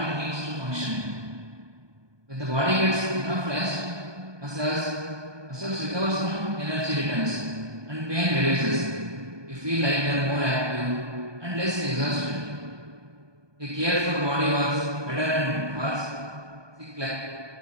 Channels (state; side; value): late; left; 1.2 ms